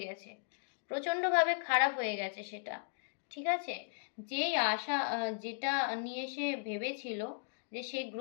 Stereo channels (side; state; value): right; silent; digital silence